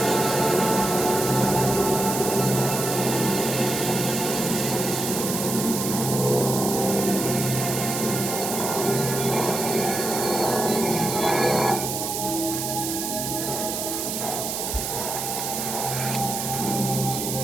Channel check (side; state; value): right; noise; hiss, 3 dB below the sound